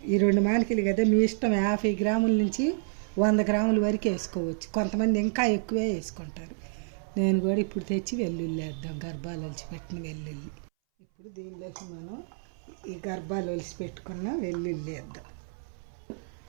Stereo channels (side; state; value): left; silent; 58 dB below the other